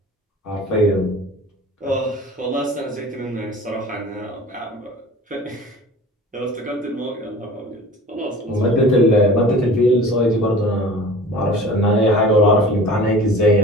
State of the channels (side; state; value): both; normal; correlation 0.42